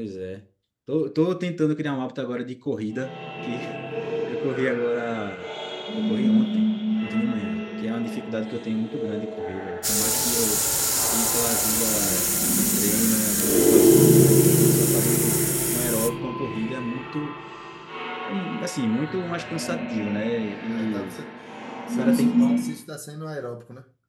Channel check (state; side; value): identical; both; correlation 1.00